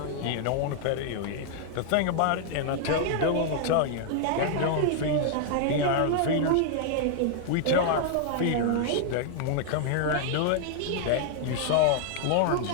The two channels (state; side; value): different; both; correlation 0.00